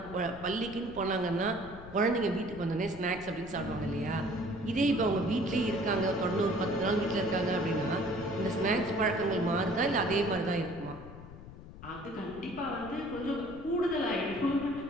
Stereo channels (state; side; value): noise; left; rumble, 15 dB below the sound